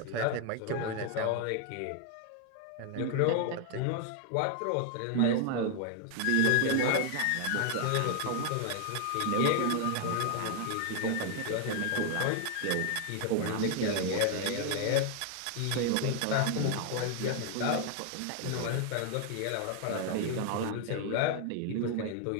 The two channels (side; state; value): both; different; correlation 0.00